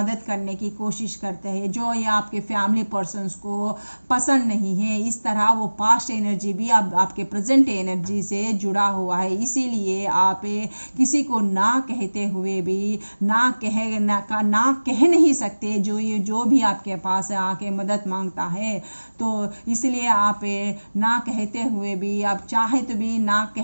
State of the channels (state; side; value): inverted; both; correlation -1.00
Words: करने की कोशिश करते हैं, जो ये आपके फैमिली पर्सन्स को पसंद नहीं है। इस तरह वो पास्ट एनर्जी भी आपके प्रेजेंट एनर्जी से जुड़ा हुआ है। इसीलिए आप किसी को ना कहते हुए भी ना कह नहीं सकते, जो भी आपके पास आके मदद मांगता है। तो इसलिए आप ना कहते हुए भी आप आप चाहे तो भी ना